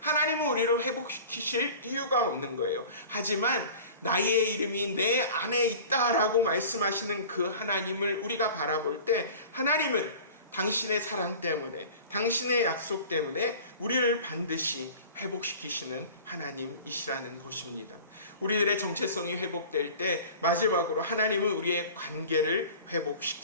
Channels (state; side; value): inverted; both; correlation -0.41